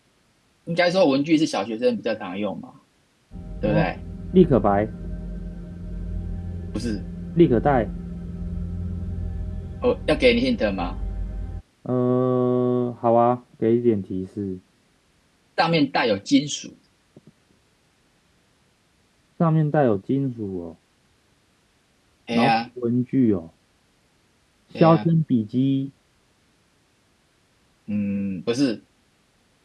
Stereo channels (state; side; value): identical; both; correlation 1.00